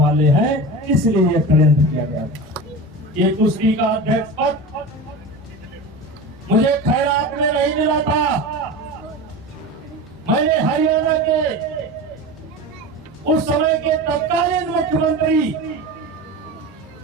हैं, इसलिए यह षड्यंत्र किया गया। ये कुश्ती का अध्यक्ष पद मुझे खैरात में नहीं मिला था। मैंने हरियाणा के उस समय के तत्कालीन मुख्यमंत्री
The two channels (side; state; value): both; normal; correlation 0.29